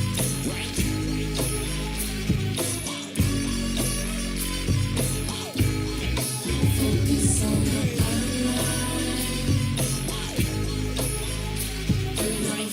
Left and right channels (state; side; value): identical; both; correlation 1.00